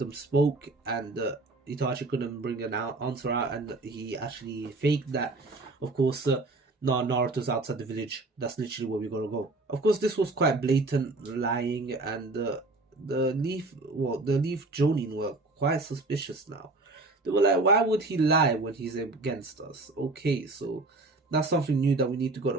spoke, and Itachi couldn't bring an answer out, and he actually faked that. Of course, Naruto's outside the village. That's literally where we gotta go. Of course, this was quite blatant lying, and the Leaf Jonin were quite suspicious now. They were like, why would he lie when he's against us? Okay, so that's something new that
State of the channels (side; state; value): left; quieter; 3.1 dB